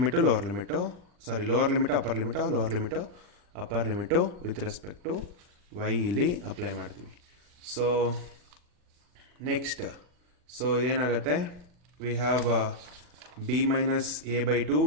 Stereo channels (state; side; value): late; left; 40 ms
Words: lower limit, lower limit upper limit, lower limit upper limit with respect to Y ಇಲ್ಲಿ apply ಮಾಡ್ತೀವಿ. So next, so ಇದೇನಾಗುತ್ತೆ, we have b minus a by 2